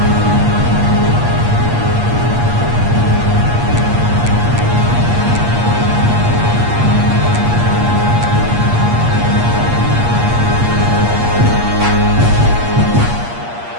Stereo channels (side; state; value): left; late; 8.5 ms